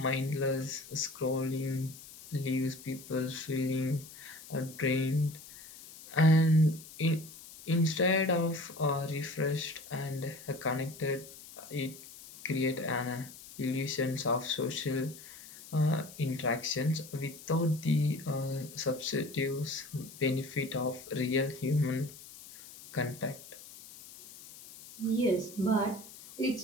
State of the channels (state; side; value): noise; left; hiss, 17 dB below the sound